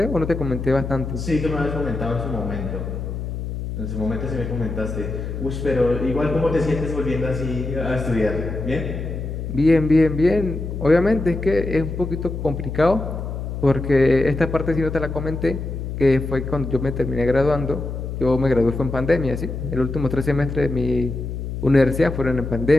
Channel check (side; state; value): left; noise; hum, 5 dB below the sound